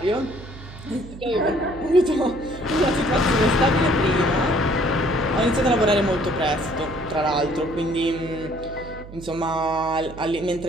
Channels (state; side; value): noise; right; hum, 15 dB below the sound